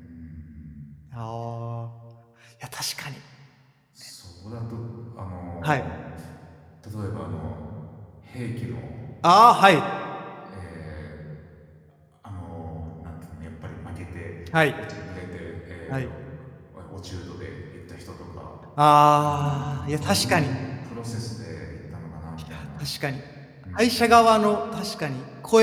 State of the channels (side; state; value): both; identical; correlation 1.00